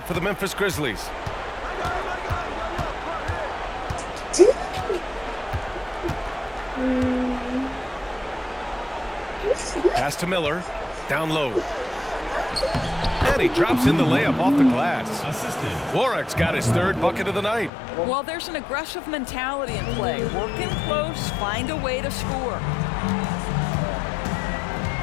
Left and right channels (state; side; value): drops out; right; at 17.7 s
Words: for the Memphis Grizzlies. Pass to Miller. Down low. And he drops in the layup off the glass. Warwick's got his 3rd bucket of the night. Well, there's an aggressive mentality in play. Work in close, find a way to score.